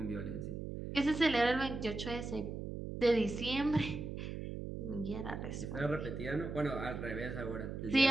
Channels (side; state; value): right; noise; hum, 6 dB below the sound